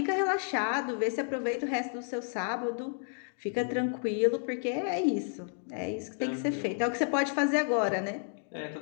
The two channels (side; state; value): right; silent; 57 dB below the other